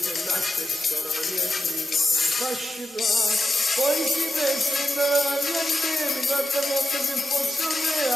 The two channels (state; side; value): normal; both; correlation 0.89